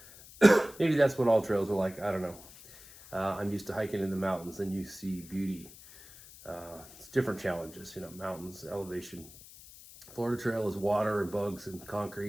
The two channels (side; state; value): left; noise; hiss, 19 dB below the sound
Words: maybe that's what all trails are like. I don't know. I'm used to hiking in the mountains, and you see beauty. It's different challenges, you know, mountains, elevation. Florida Trail is water and bugs and